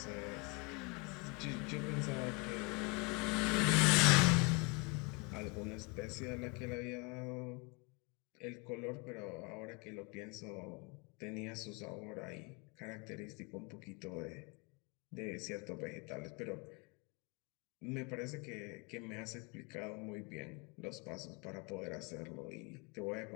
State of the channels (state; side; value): quieter; right; 30.0 dB